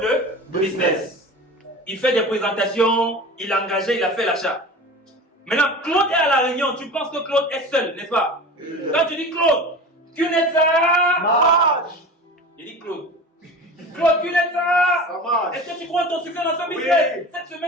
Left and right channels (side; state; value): both; normal; correlation 0.34